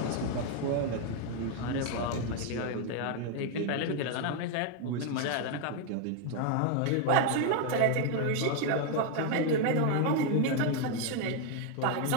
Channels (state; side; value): different; both; correlation 0.01